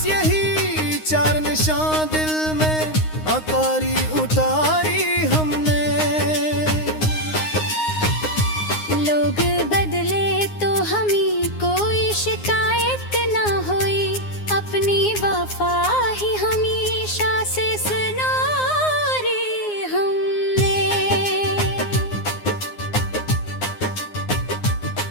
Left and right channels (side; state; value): right; late; 9.7 ms